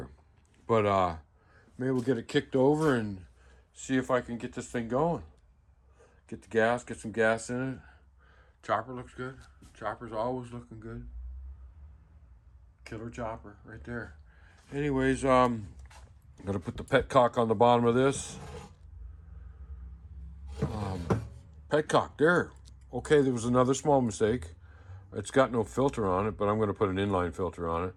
But maybe we'll get it kicked over and see if I can get this thing going. Get the gas, get some gas in it. Chopper looks good. Chopper's always looking good. Killer chopper right there. Anyways, I'm gonna put the petcock on the bottom of this. Petcock there. Okay, there was another small mistake. It's got no filter on it, but I'm gonna put an inline filter on it.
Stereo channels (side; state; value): both; identical; correlation 1.00